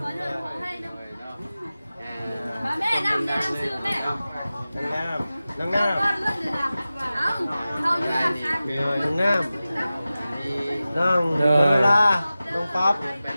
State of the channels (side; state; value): both; inverted; correlation -0.95